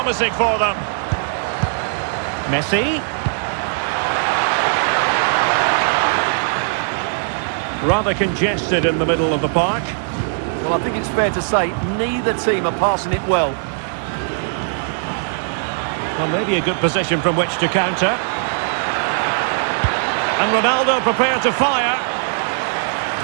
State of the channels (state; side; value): silent; left; digital silence